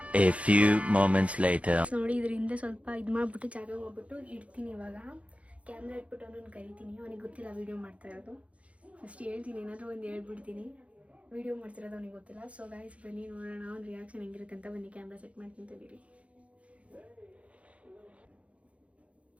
A few moments later. ನೋಡಿ ಇದರಿಂದ ಸ್ವಲ್ಪ ಇದು ಮಾಡಿಬಿಟ್ಟು ಜಾಗ ಹೋಗ್ಬಿಟ್ಟು ಇಡ್ತೀನಿ. ಇವಾಗ ಕ್ಯಾಮ್ರಾ ಇಟ್ಬಿಟ್ಟು ಅವನನ್ನು ಕರಿತೀನಿ. ಅವನಿಗೆ ಗೊತ್ತಿಲ್ಲ ವೀಡಿಯೋ ಮಾಡ್ತಾ ಇರೋದು. ಫಸ್ಟ್ ಹೇಳ್ತೀನಿ, ಏನಾದರೂ ಒಂದು ಹೇಳ್ಬಿಡ್ತೀನಿ. ವೀಡಿಯೋ ಮಾಡ್ತಿರೋದು ಅವನಿಗೆ ಗೊತ್ತಿಲ್ಲ. ಸೊ ಗೈಸ್ ಬನ್ನಿ ನೋಡೋಣ ಅವ್ನ ರಿಯಾಕ್ಷನ್ ಹೆಂಗಿರುತ್ತೆ ಅಂತ. ಬನ್ನಿ ಕ್ಯಾಮ್ರಾ ಸೆಟ್ ಮಾಡ್ತೀನಿ ತಡೀರಿ.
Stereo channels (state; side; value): late; left; 0.064 ms